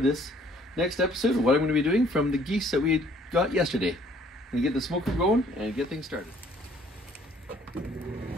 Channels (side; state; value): both; normal; correlation 0.60